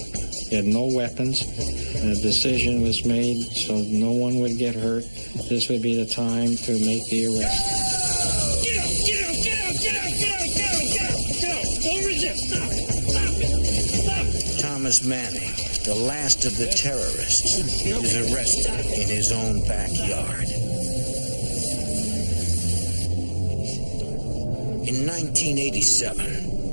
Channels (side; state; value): both; inverted; correlation -1.00